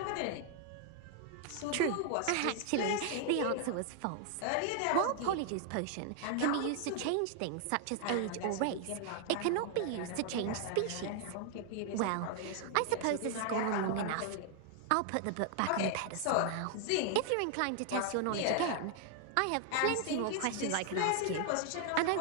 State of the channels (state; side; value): different; both; correlation 0.00